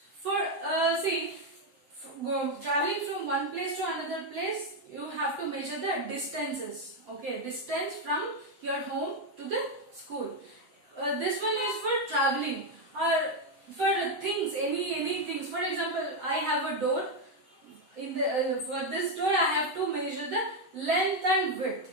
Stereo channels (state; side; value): late; left; 7.8 ms